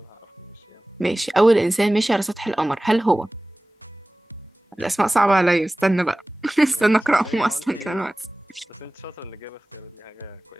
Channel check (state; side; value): normal; both; correlation 0.98